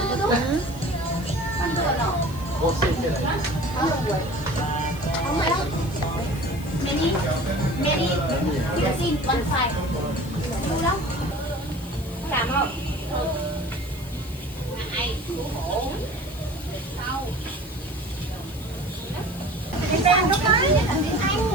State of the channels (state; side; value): noise; left; hiss, 19 dB below the sound